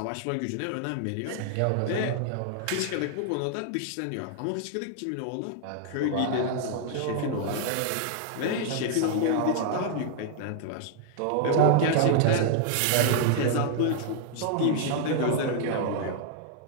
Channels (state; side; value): different; both; correlation 0.00